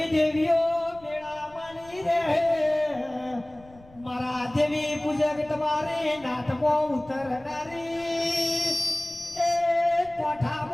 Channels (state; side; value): noise; left; rumble, 24 dB below the sound